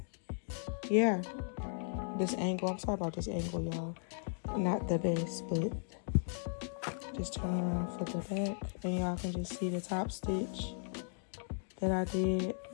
yeah, this angle, I'm sorry about this angle, y'all, not the best, but just turn around for the back and y'all can just see the top stitch that I did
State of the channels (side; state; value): right; silent; digital silence